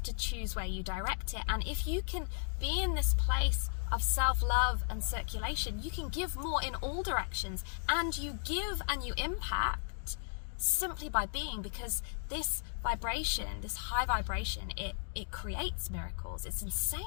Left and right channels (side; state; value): right; silent; digital silence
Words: to choose where you direct it. And if you can be in this place of self-love and circulation, you can give more in all directions, and you give and you impact simply by being, because this vibration, this high vibration, it creates miracles. It's